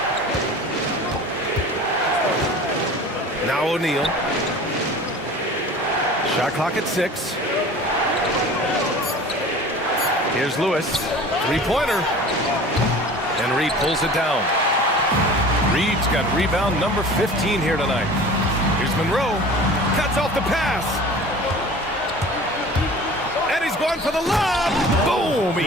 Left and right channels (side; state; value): both; normal; correlation 0.41